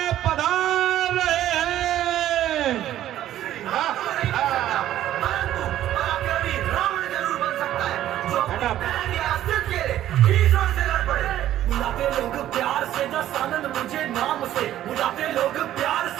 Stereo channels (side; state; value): left; quieter; 12.6 dB